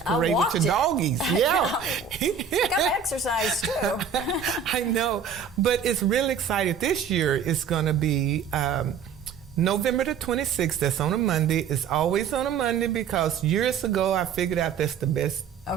I parade with your doggies. Yeah. I got to exercise too. I know. But it's really exciting. This year it's going to be November the 26th. That's on a Monday. It's always on a Monday because years ago I figured out that's the best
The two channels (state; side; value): quieter; left; 7.0 dB